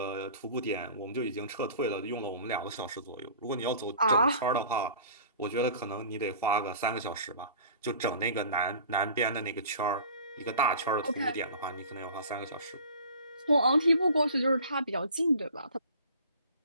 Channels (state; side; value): inverted; both; correlation -0.44